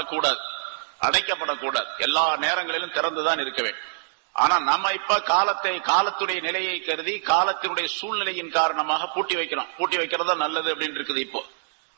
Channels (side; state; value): left; silent; digital silence